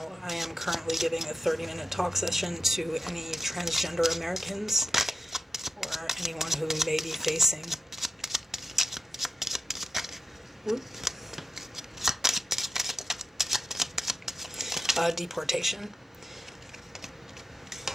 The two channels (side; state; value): both; normal; correlation 0.88